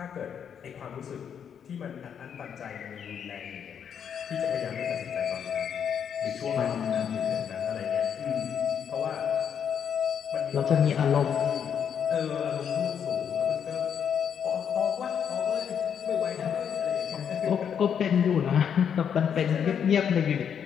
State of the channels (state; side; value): quieter; right; 8.0 dB